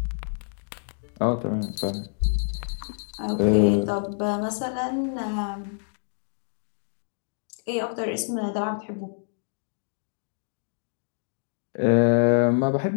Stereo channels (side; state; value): right; silent; digital silence